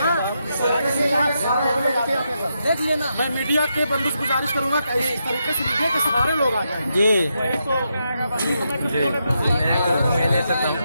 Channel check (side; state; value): both; inverted; correlation -0.83